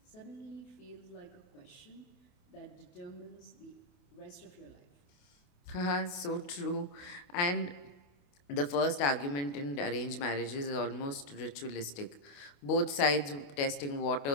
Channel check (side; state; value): right; late; 28 ms